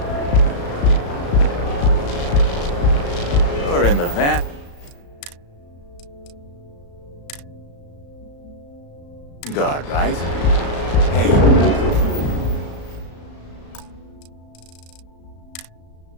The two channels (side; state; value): right; late; 35 ms